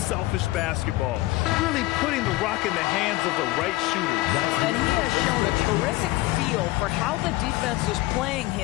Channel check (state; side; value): quieter; right; 19.1 dB